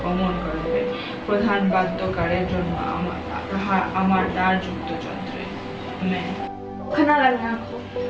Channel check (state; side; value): identical; both; correlation 1.00